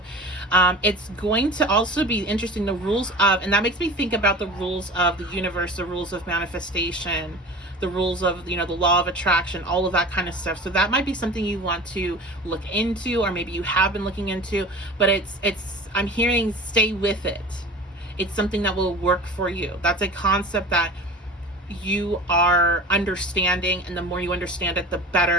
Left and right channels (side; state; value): both; normal; correlation 0.36